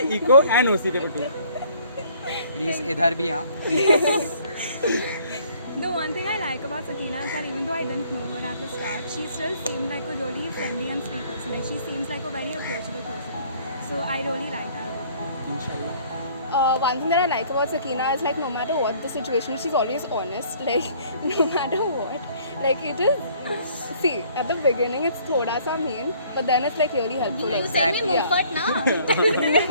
eco and OC paper too. Please, इधर भी हाँ. The one thing I like about Sakina is that even though I didn't know her at the start, she still seemed like a really friendly and sweet person. Like she seems like a very approachable person. So I really like that about her. Inshallah. One thing that I like about Sakina is like no matter what the situation, she's always honest. Like no matter what, like it is. See, at the beginning it's thoda sa mean, but then it's like really helpful. You Like, send me yeah. Mufat now.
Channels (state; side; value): inverted; both; correlation -0.58